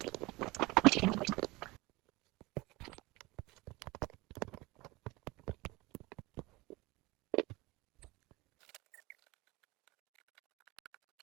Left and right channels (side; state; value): left; quieter; 22.4 dB